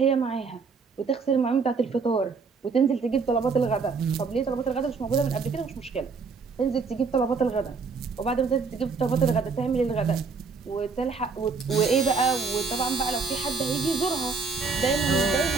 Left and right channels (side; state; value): left; quieter; 4.9 dB